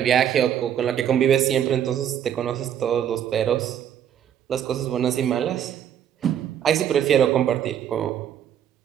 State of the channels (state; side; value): quieter; left; 9.6 dB